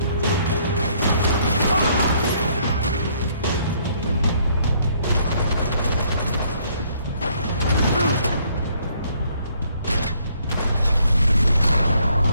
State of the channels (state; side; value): inverted; both; correlation -0.66